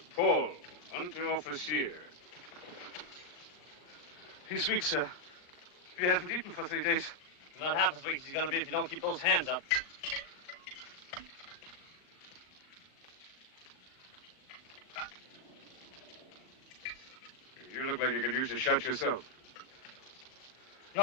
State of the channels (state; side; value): late; right; 39 ms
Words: Paul, Unteroffizier. He's weak, sir. We haven't eaten for 3 days. Not half as weak as he's going to be if you don't keep those hands up. You look like you could use a shot yourself.